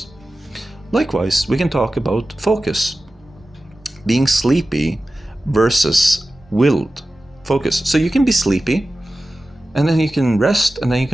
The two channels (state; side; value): normal; both; correlation 0.94